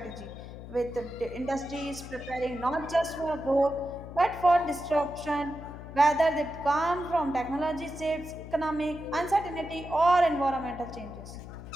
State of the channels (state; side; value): noise; left; hum, 13 dB below the sound